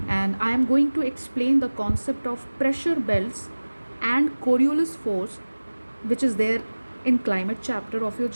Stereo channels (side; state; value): both; inverted; correlation -1.00